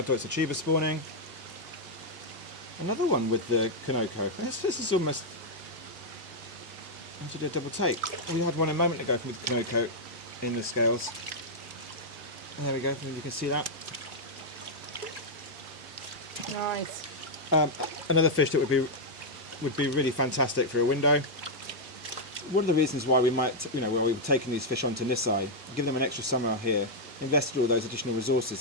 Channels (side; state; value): both; normal; correlation -0.03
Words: Achiba spawning. Another one with the Kanoko. This is almost... I have to do a double take. We had one a moment ago with the Kanoko in the scales. There we go, you can see that. Nice. Another fish that would be really fantastic for a window. One of the reasons why we might, why we've taken these fish onto Nisai, give them an extra summer here, invested all those additional resources